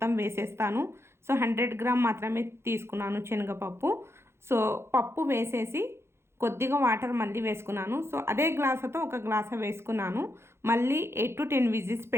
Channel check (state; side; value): late; left; 0.12 ms